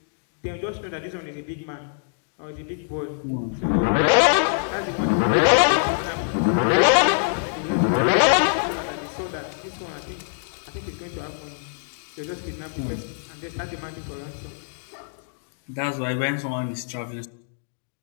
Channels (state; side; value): silent; right; digital silence